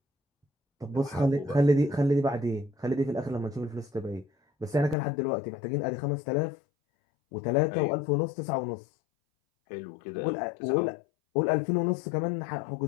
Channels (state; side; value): drops out; right; at 5.0 s